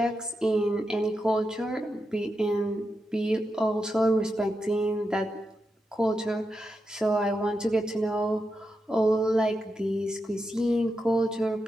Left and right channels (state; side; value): normal; both; correlation 0.87